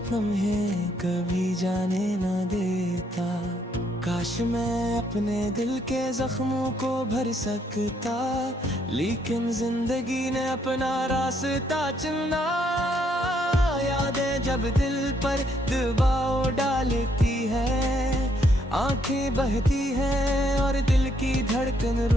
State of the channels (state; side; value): normal; both; correlation 0.71